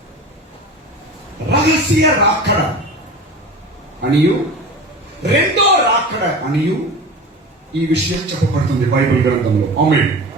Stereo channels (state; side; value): normal; both; correlation 0.33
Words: రహస్య రాకడ అనియు రెండో రాకడ అనియు ఈ విషయం చెప్పబడుతుంది బైబిల్ గ్రంథంలో. ఆమేన్.